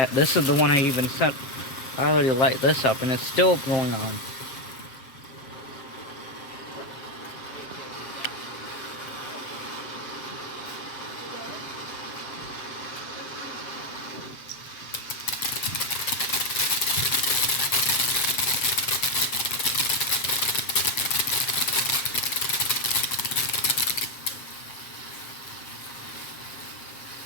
This is the one I even set. I already light this up and it's still going on.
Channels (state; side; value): late; right; 7.6 ms